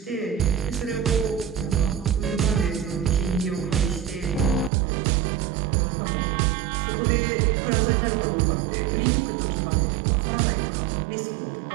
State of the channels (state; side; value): drops out; left; at 4.7 s